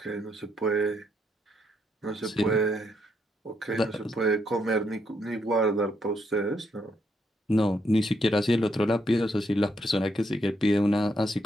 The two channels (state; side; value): normal; both; correlation 0.76